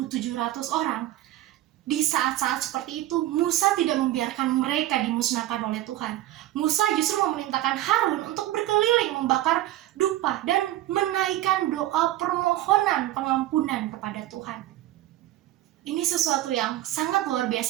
orang. Di saat-saat seperti itu, Musa tidak membiarkan mereka dimusnahkan oleh Tuhan. Musa justru memerintahkan Harun untuk berkeliling membakar dupa dan menaikkan doa permohonan pengampunan kepada Tuhan. Ini sesuatu yang sangat luar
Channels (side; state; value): left; quieter; 14.7 dB